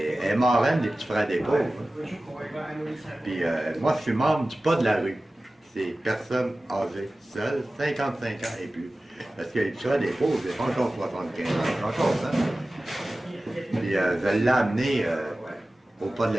marraine des petits frères des pauvres. Puis moi, je suis membre du pas de la rue. C'est personnes âgées, seules, 55 ans et plus. Parce que les petits frères des pauvres, c'est pas encore 75 ans, c'est encore ça. Puis je l'ai amené au pas de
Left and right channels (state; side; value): normal; both; correlation 0.96